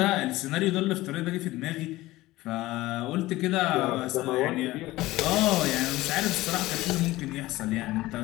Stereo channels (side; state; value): right; quieter; 18.0 dB